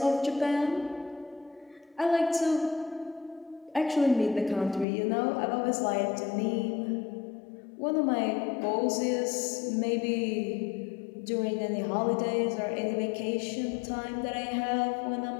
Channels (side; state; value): right; drops out; at 4.9 s